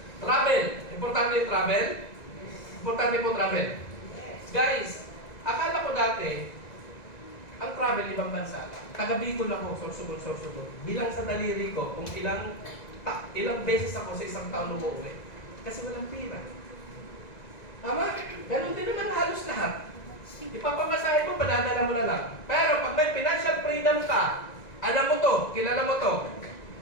Travel. Importante yung travel? Importante po travel. Guys, akala ko dati, ang travel ibang bansa lang. Taga Bicol ako, sorsugod. Bilang sa daliri ko, kung ilang beses ako sa isang taon umuwi. Kasi walang pira. Tama? Ganun din naman halos lahat. Ipapamasahe mo, padadala mo na lang. Pero pag may financial freedom ka, alam mo to, kilala mo to,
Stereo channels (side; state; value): right; late; 1.9 ms